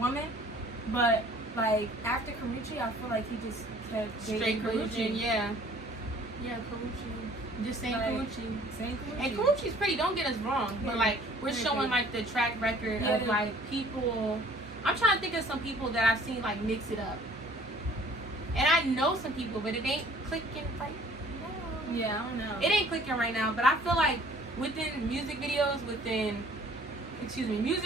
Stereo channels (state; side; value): normal; both; correlation 0.53